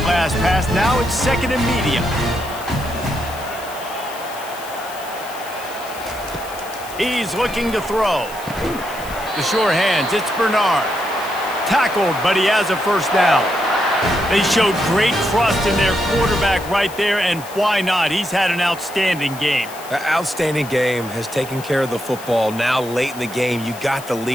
last pass. Now it's 2nd and medium. He's looking to throw. The sure hands, it's Bernard. Tackled, but he has a first down. They showed great trust in their quarterback right there, and why not? He's had an outstanding game. An outstanding game, has taken care of the football. Now late in the game, you got the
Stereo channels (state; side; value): noise; left; hiss, 16 dB below the sound